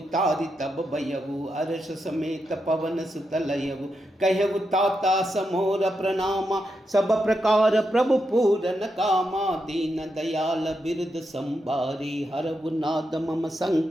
तब भयउ अर्ष समेत पवन सुत लयउ कहु ताता समोर प्रणामा सब प्रकार प्रभु पूरन कामा दीन दयाल बिरद संभारी हरउ नाद मम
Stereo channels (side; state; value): both; normal; correlation 0.85